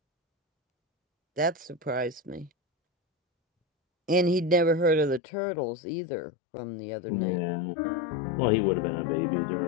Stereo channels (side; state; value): right; drops out; at 5.2 s